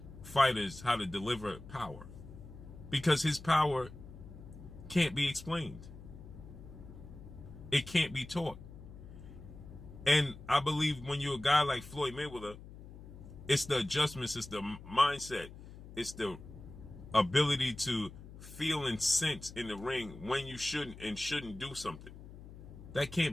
fighters how to deliver power, because his power can't be explained. It can't be taught. And I believe when you're a guy like Floyd Mayweather, it's the adjustments, it's the mindset, it's the ability to feel and sense in the ring when you shouldn't and shouldn't do something. That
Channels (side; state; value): left; noise; hum, 15 dB below the sound